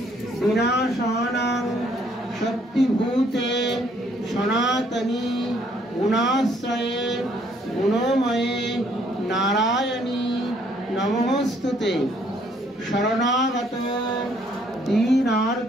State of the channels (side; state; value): both; normal; correlation 0.65